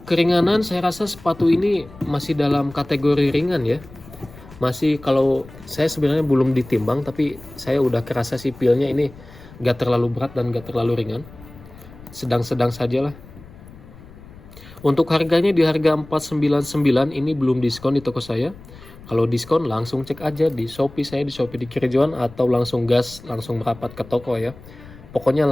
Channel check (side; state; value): left; noise; rumble, 20 dB below the sound